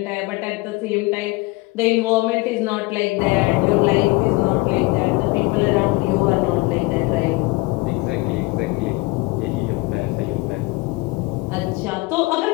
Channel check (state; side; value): quieter; right; 23.2 dB